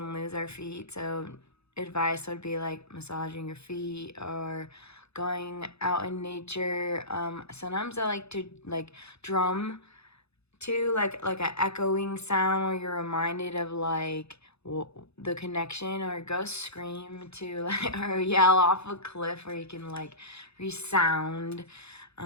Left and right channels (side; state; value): right; late; 0.79 ms